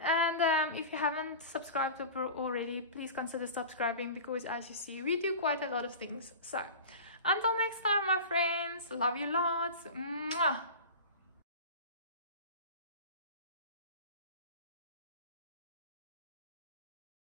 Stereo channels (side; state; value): both; inverted; correlation -0.33